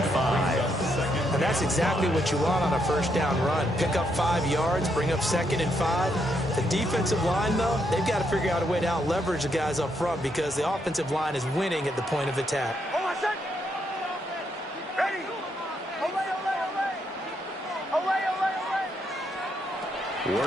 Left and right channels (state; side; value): normal; both; correlation 0.77